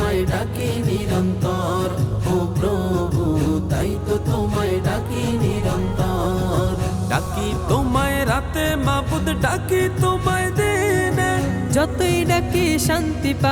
ডাকি নিরন্তর। ও প্রভু, তাই তো তোমায় ডাকি নিরন্তর। ডাকি তোমায় রাতে মাবুদ, ডাকি তোমায় দিনে, যতই ডাকি শান্তি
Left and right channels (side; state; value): both; identical; correlation 1.00